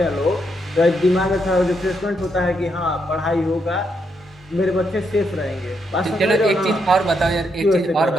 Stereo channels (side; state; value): both; normal; correlation 0.79